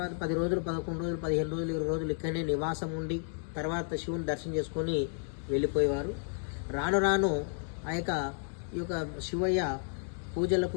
10 రోజులు, 11 రోజులు, 15 రోజులు, 20 రోజులు ఇక్కడనే నివాసం ఉండి తర్వాత శివుని దర్శనం చేసుకొని వెళ్ళిపోయేవారు. రాను రాను ఈ యొక్క శివయ్య పూజలకు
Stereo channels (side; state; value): right; silent; 56 dB below the other